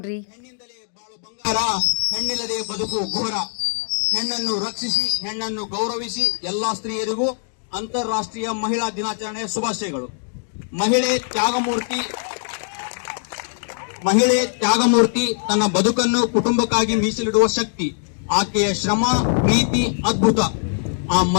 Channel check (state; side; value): silent; right; digital silence